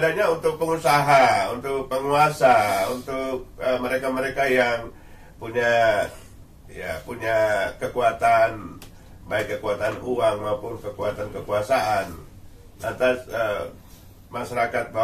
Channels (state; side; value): identical; both; correlation 1.00